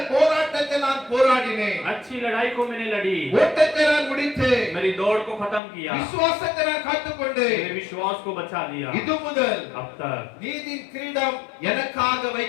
போராட்டத்தை நான் போராடினேன். अच्छी लड़ाई को मैंने लड़ी, ஓட்டத்தை நான் முடித்தேன். मेरी दौड़ को खत्म किया, விசுவாசத்தை நான் காத்துக்கொண்டேன். मेरे विश्वास को बचा लिया। இது முதல் अब तक நீதியின் கிரீடம் எனக்காக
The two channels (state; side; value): drops out; right; at 5.6 s